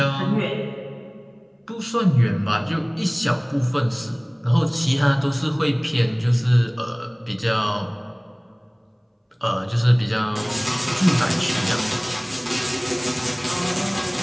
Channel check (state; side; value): identical; both; correlation 1.00